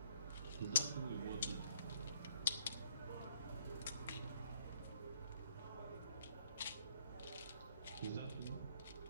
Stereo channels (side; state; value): both; inverted; correlation -0.65